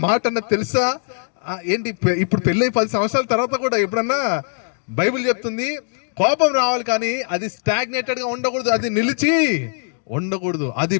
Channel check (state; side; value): silent; right; 59 dB below the other